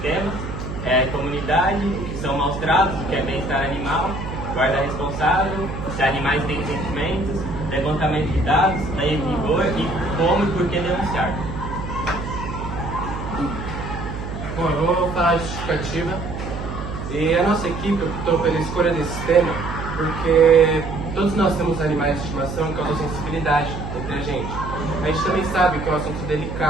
tema, comunidade, que são maus tratos, o que é bem-estar animal, guarda responsável, se animais têm sentimentos, levantamento de dados, lei em vigor e como e por que denunciar. Bom, eu vou falar a justificativa. E a nossa equipe optou pela escolha desse tema porque todos nós temos animais de estimação que causam sensibilidade entre a gente. A gente também sabe que é um assunto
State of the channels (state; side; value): noise; right; hum, 7 dB below the sound